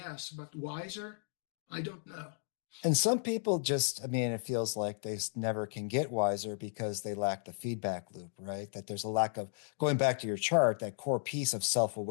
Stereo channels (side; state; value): right; silent; digital silence